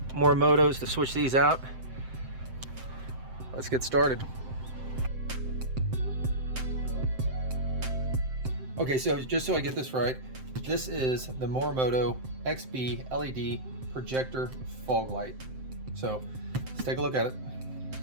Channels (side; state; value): left; late; 7.7 ms